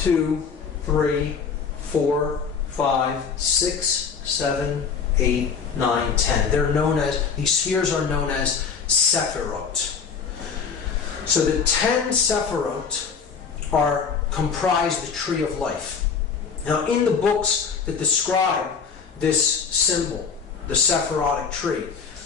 3, 4, 5, 6, 7, 8, 9, 10. They're known as, these spheres are known as Sephirot. So the 10 Sephirot comprise the Tree of Life. Now in the books that describe this symbol, the Sephirotic tree,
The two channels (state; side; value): quieter; right; 6.0 dB